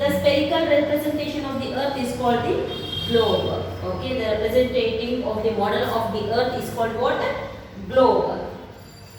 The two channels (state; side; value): identical; both; correlation 1.00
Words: spherical representation of the Earth is called the globe. Okay, the representative of the model of the Earth is called what? Globe.